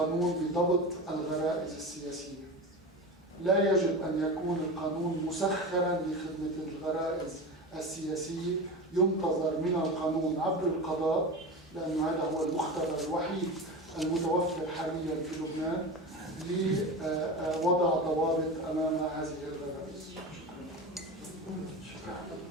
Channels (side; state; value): both; normal; correlation 0.27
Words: بضبط الغرائز السياسية. لا يجب أن يكون القانون مسخرا لخدمة الغرائز السياسية، ينتظر من القانون عبر القضاء، لأن هذا هو المختبر الوحيد المتوفر حاليا في لبنان لوضع ضوابط أمام هذه الغرائز. شكرا.